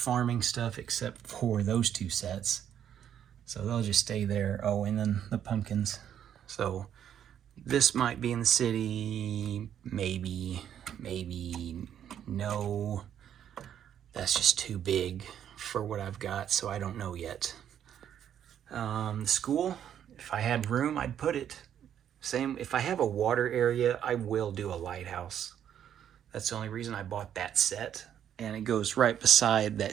stuff except for those 2 sets. So they'll just stay there. Oh, and then the pumpkins. So this might be in the city. Maybe, no. That's just too big for what I've got, so I don't know yet. The school, if I had room, I'd put it. Same, if I have a water area, I will do a lighthouse. That's the only reason I bought that set. And it goes right beside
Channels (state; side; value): quieter; left; 9.6 dB